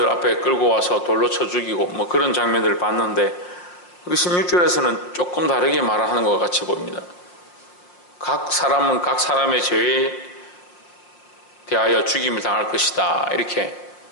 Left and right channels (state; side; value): late; right; 5.6 ms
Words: 앞에 끌고 와서 돌로 쳐 죽이고 뭐 그런 장면들을 봤는데, 16절에서는 조금 다르게 말하는 것 같이 보입니다. 각 사람은 각 사람의 죄에 대하여 죽임을 당할 것이다 이렇게